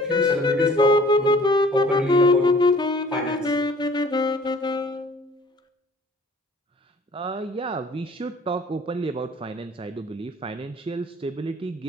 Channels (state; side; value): normal; both; correlation 0.52